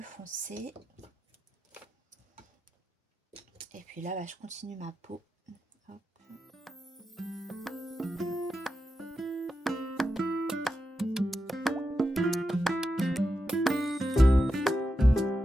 foncé. Et puis là, je continue ma peau. Hop.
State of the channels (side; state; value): both; normal; correlation 0.88